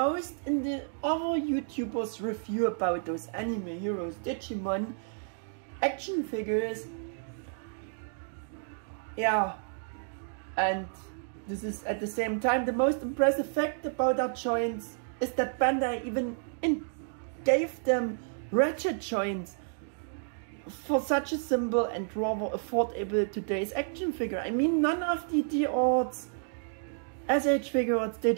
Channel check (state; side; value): silent; left; digital silence